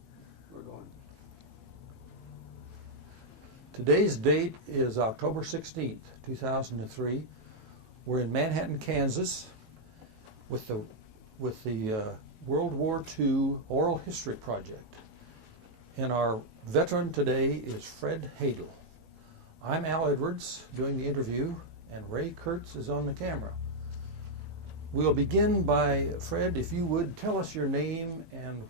We're going. Today's date is October 16th, 2003. We're in Manhattan, Kansas with the World War II Oral History Project. And our veteran today is Fred Hadle. I'm Al Edwards doing the interview, and Ray Kurtz is on the camera. We'll begin by, Fred, if you would, tell us your name and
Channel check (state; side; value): late; left; 18 ms